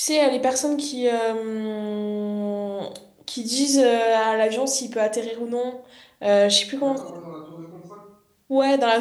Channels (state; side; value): identical; both; correlation 1.00